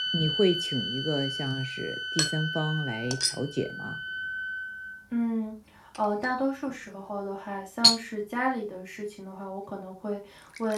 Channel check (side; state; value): both; identical; correlation 1.00